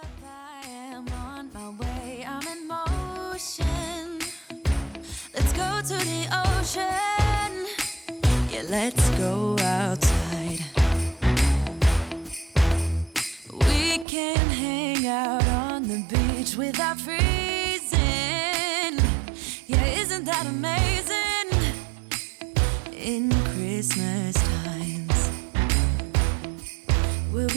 I am on my way, I'm in motion. Let's go to the ocean. Yeah, let's go outside. We can hang out on the beach without freezing. Yeah, isn't that amazing? In Christmas times, we'll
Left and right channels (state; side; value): drops out; left; at 14.1 s